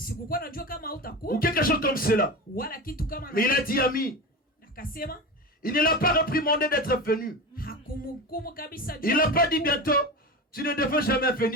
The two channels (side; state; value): both; normal; correlation 0.25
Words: Ou quelque chose comme cela. Mais il a dit, ami, il ne l'a pas réprimandé d'être venu. Il n'a pas dit bientôt, tu ne devais jamais